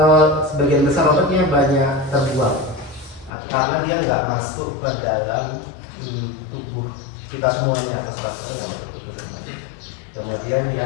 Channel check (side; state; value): right; drops out; at 3.3 s